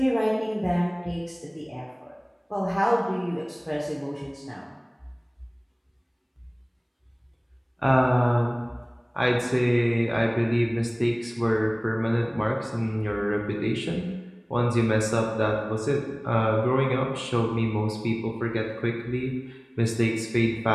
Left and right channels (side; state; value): both; identical; correlation 1.00